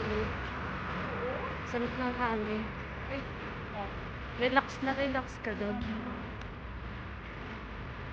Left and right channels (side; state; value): both; identical; correlation 1.00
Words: Sarap ng hangin. Relax na relax ka doon.